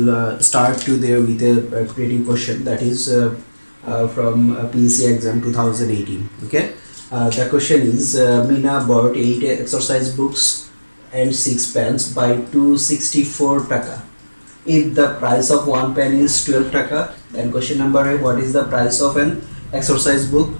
start today with a creative question that is from PEC exam 2018. Okay. The question is Mina bought 8 exercise books and 6 pens by 264 taka. If the price of one pen is 12 taka, then question number A, what is the price of an exercise book?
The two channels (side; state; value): both; inverted; correlation -1.00